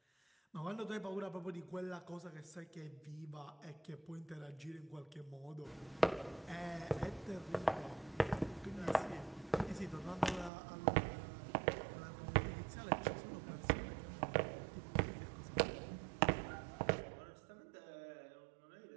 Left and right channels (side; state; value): left; drops out; at 10.5 s